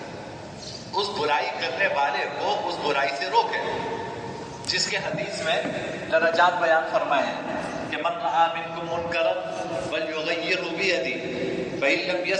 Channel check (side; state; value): both; identical; correlation 1.00